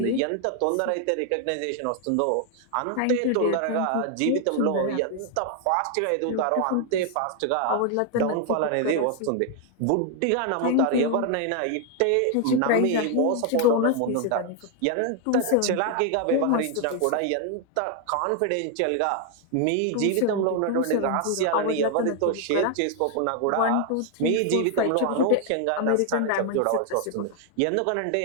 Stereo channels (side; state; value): both; different; correlation 0.00